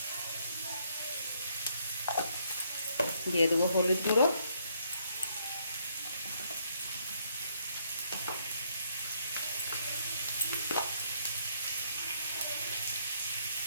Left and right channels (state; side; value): inverted; both; correlation -0.70